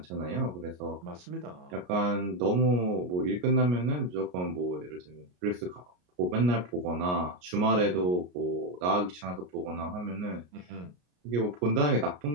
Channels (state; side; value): late; left; 33 ms